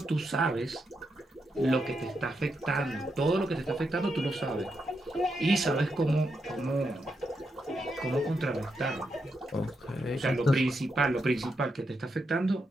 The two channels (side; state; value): both; normal; correlation 0.83